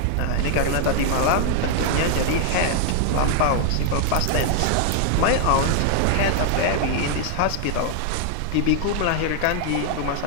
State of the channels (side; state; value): both; different; correlation 0.00